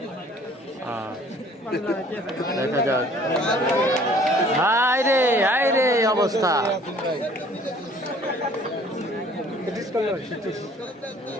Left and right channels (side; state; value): both; normal; correlation 0.54